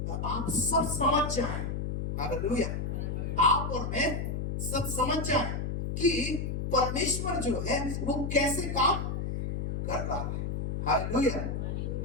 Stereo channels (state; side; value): noise; left; hum, 2 dB below the sound